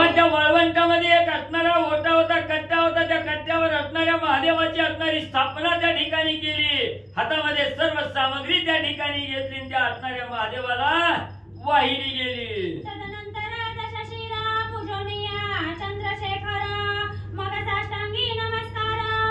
त्या वाळवंटामध्ये एक असणारा ओटा होता, कट्टा होता, त्या कट्ट्यावर असणाऱ्या महादेवाची असणारी स्थापना त्या ठिकाणी केली, हातामध्ये सर्व सामग्री त्या ठिकाणी घेतली, त्या असणाऱ्या महादेवाला वाहिली गेली. तदनंतर दशशिरा पूजनीया चंद्रशेखर, मग साष्टांगी नमस्कार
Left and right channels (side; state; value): both; identical; correlation 1.00